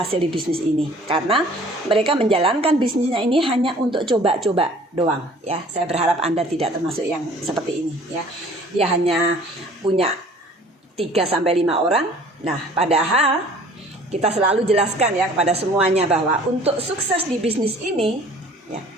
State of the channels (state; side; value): normal; both; correlation 0.51